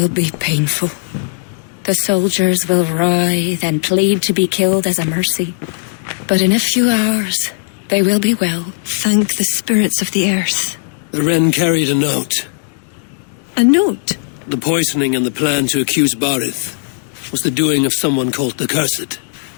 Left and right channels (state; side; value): silent; right; digital silence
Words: be painful. The soldiers will writhe and plead to be killed as a mercy. But in a few hours, they will be well. Thank the spirits of the earth. The Wren carried a note. A note? The poisoning and the plan to accuse Bareth was the doing of someone called the Cursed.